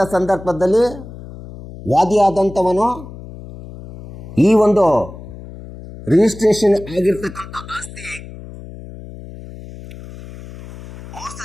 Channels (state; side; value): noise; left; hum, 15 dB below the sound